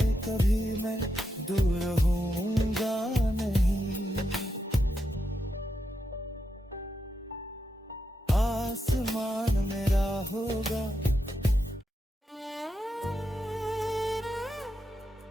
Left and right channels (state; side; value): normal; both; correlation 0.85